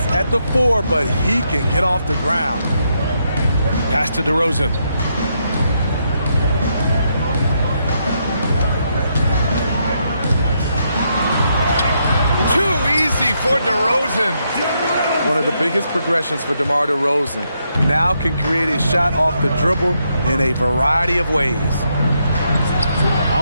at the 4, but he can get off the ground. Pass to DeRozan. Too easy for DeRozan. One of the biggest progressions for DeMar DeRozan. Now can create a shot off the dribble in a variety of ways.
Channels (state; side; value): inverted; both; correlation -0.78